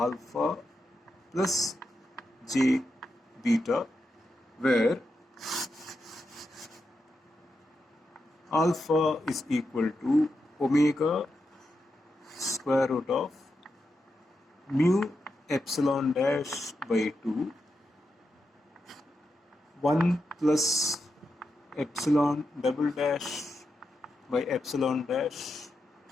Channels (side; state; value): both; normal; correlation 0.87